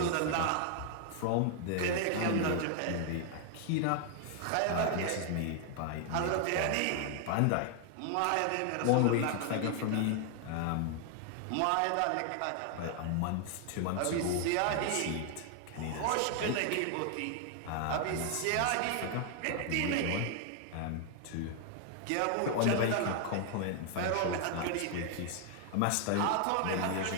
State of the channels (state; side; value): different; both; correlation 0.00